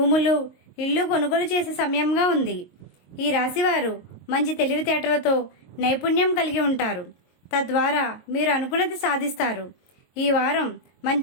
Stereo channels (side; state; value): right; late; 22 ms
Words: ఇల్లు కొనుగోలు చేసే సమయంగా ఉంది. ఈ రాశివారు మంచి తెలివితేటలతో నైపుణ్యం కలిగి ఉంటారు. తద్వారా మీరు అనుకున్నది సాధిస్తారు. ఈ వారం